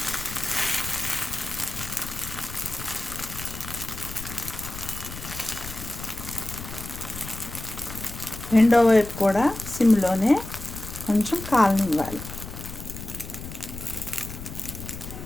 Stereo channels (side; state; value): left; noise; rumble, 11 dB below the sound